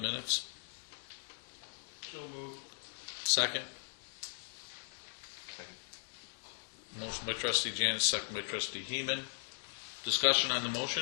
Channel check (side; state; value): right; silent; digital silence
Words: So moved. Second? Motion by Trustee Janis, second by Trustee Heeman. Discussion on the